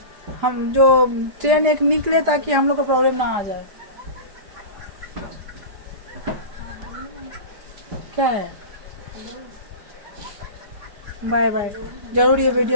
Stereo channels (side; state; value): left; late; 4.9 ms